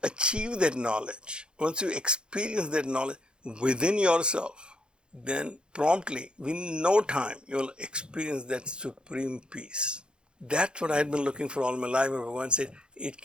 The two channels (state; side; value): late; left; 0.051 ms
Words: achieve that knowledge, once you experience that knowledge within yourself, then promptly, within no time, you will experience that supreme peace. That's what I had been looking for all my life. Bhagavan said, it